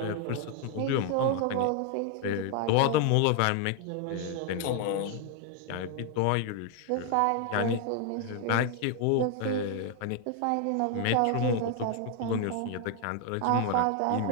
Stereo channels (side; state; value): both; different; correlation 0.01